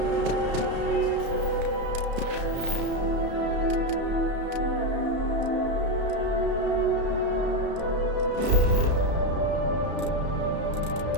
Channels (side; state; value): left; late; 33 ms